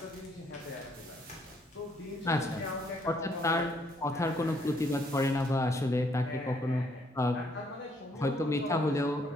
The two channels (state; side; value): normal; both; correlation 0.68